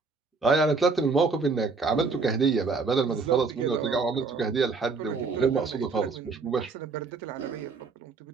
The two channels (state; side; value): quieter; left; 4.4 dB